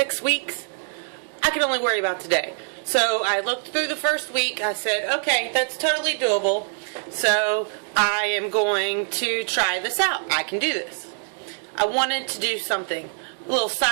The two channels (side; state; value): left; silent; 63 dB below the other